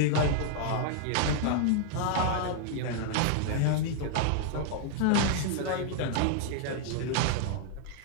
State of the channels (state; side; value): different; both; correlation 0.00